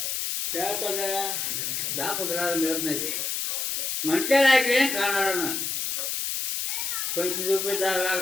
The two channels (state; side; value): noise; left; hiss, 1 dB below the sound